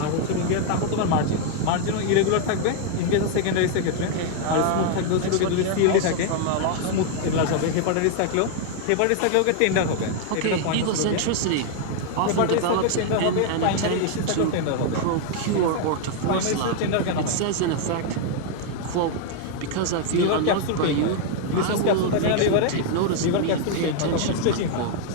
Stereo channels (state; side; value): different; both; correlation 0.00